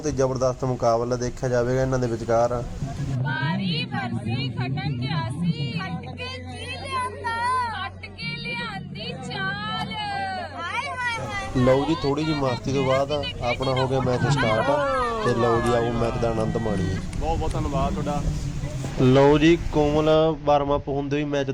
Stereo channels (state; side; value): identical; both; correlation 1.00